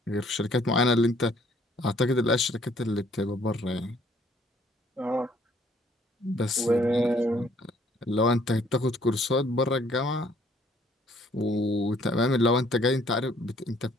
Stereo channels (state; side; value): normal; both; correlation 0.62